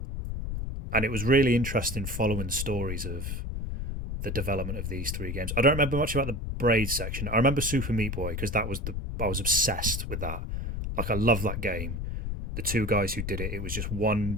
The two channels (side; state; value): left; noise; rumble, 4 dB below the sound